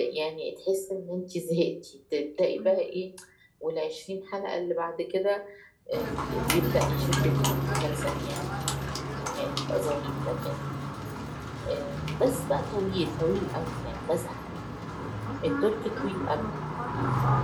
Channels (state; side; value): identical; both; correlation 1.00